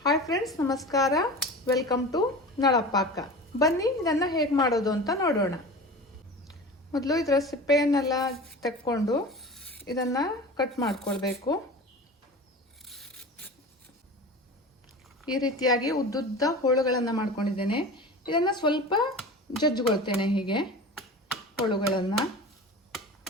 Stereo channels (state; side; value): normal; both; correlation 0.34